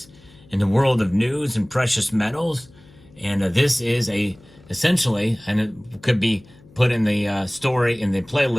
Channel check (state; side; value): noise; left; hum, 26 dB below the sound